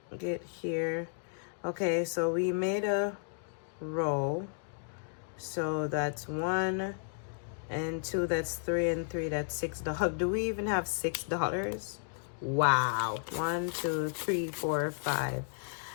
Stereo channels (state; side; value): silent; right; digital silence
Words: get here. Okay, so we made a roll. So that's 1 and 2, that's 3, and 3, that's $6. Do we even have $6? Wow. 1, 2, 3, 4, 5.